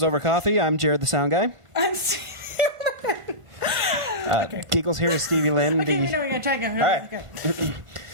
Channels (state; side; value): late; left; 1.5 ms